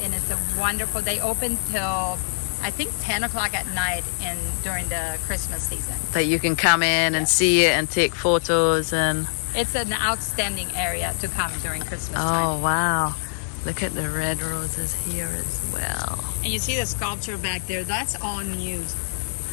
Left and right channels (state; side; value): silent; right; digital silence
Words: and it's a wonderful, they open till I think 10 o'clock at night during the Christmas season. That you can come in and see it and take photos and... It's an outstanding area to come during Christmas Oh, time. wow. Look at the red roses here as well. And you see the sculpture back there, that's all new.